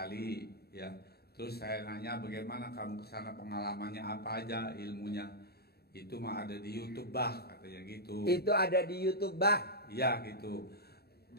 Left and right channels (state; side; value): late; right; 0.46 ms